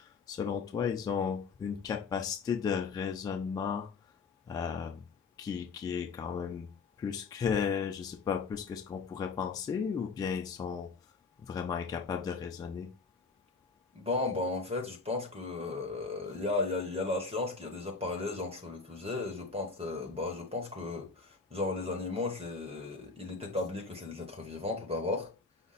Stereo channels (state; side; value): quieter; right; 4.6 dB